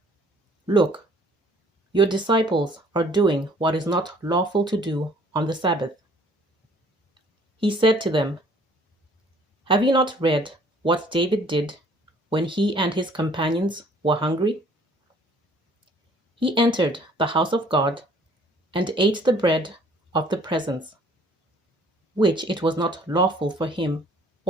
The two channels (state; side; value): normal; both; correlation 0.57